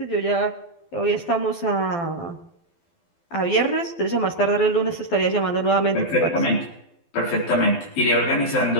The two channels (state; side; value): late; right; 12 ms